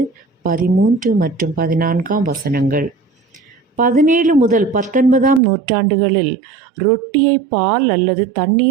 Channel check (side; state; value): left; drops out; at 5.4 s